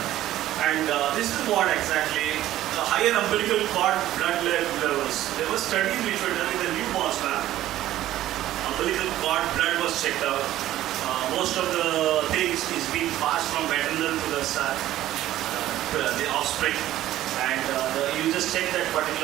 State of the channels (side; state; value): left; quieter; 13.8 dB